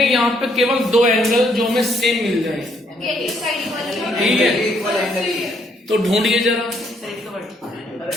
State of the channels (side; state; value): both; normal; correlation 0.70